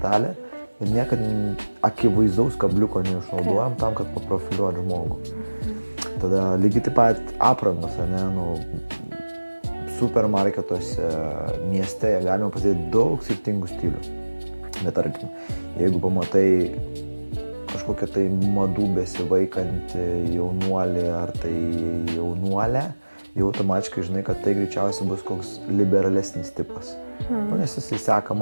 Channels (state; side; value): inverted; both; correlation -1.00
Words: ir niekad akivaizdaus kabliuko neišnaudojam tam, kad paprofiliuoti žmogų. Tada lygiai taip pat aprangos, ne, supermarketuose, mieste galima pasidėti daug skirtingų stilių. Bet tarkim, jeigu pamatai kažkokią tai madų besivaikantį jaunuolį ar tai jaunuolę, jau automatiškai žinai, kad tai greičiausiai bus koks liberalesnis tipas. Nes jis seka